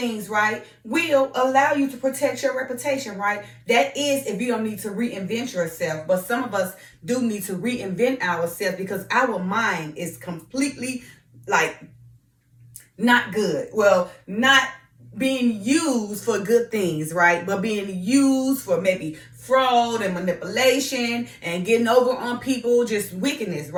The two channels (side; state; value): both; identical; correlation 1.00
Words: right, will allow you to protect your reputation, right? That is if you don't need to reinvent yourself. But some of us do need to reinvent ourselves because our mind is completely like not good. Well, not being used for good things, right? But being used for maybe fraud and manipulation and getting over on people, just wickedness,